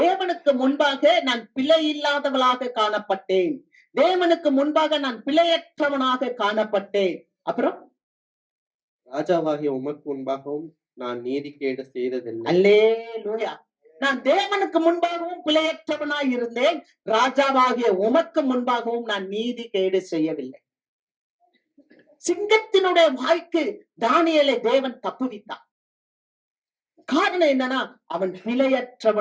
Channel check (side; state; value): both; identical; correlation 1.00